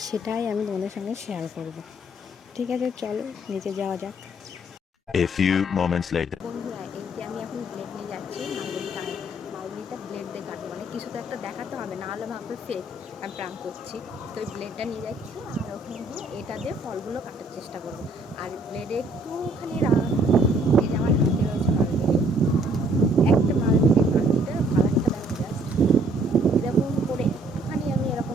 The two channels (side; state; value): both; normal; correlation 0.63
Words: সেটাই আমি তোমাদের সঙ্গে শেয়ার করব। ঠিক আছে, চলো নিচে যাওয়া যাক। A few moments later. বন্ধুরা, এই যে আমি এখন ব্লেড নিয়ে যাচ্ছি, মালবেরিটা ব্লেড দিয়ে কাটবো, মানে কিছু তো একটা দেখাতে হবে, না হলে ভাববে ফেক আমি প্রাঙ্ক করছি। তো ওই ব্লেডটা নিয়ে যাচ্ছি, আর ওখানে গিয়ে এটা দিয়ে ফলগুলো কাটার চেষ্টা করবো। আর ব্লেডে একটুখানি এই যে আমার হাতে রয়েছে মালবেরি, একটা মালবেরি মাটিতে কালারটা দেখো জাস্ট, এরকম করে একটুখানি আমি এরকম